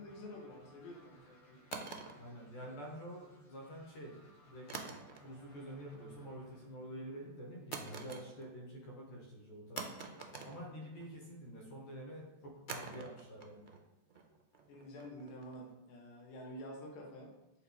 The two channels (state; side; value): late; right; 14 ms